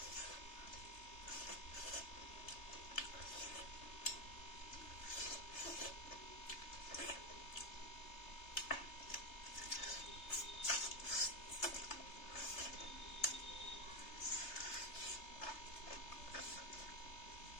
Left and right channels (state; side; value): late; right; 3.3 ms